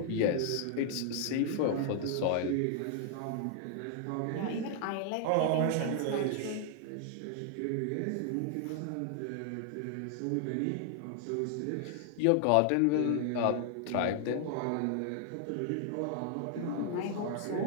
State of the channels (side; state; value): both; different; correlation 0.00